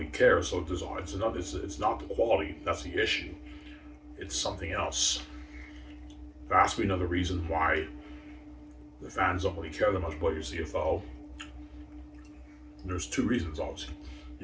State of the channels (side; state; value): both; identical; correlation 1.00